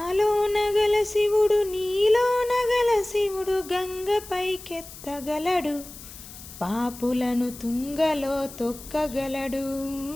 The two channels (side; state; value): left; noise; hiss, 16 dB below the sound